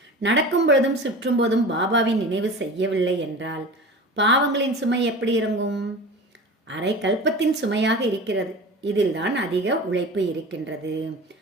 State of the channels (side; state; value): both; normal; correlation 0.35